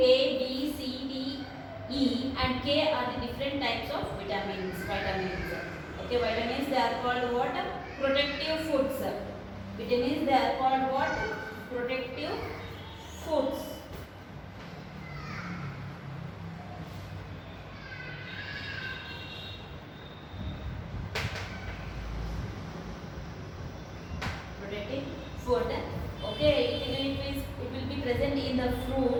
B, C, D, E and K are the different types of vitamins. Okay, vitamins they are called what? Protective foods. Vitamins they are called what? Protective foods. Protective food. Okay, it will be present in the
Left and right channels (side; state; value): both; identical; correlation 1.00